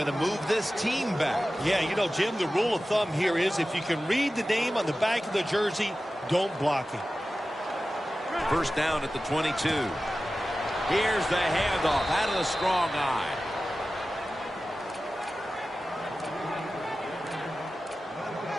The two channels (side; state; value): both; normal; correlation 0.95